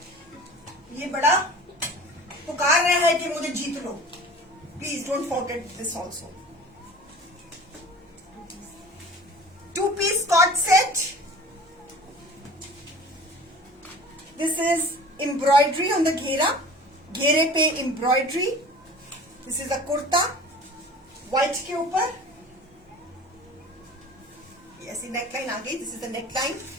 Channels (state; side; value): normal; both; correlation 0.42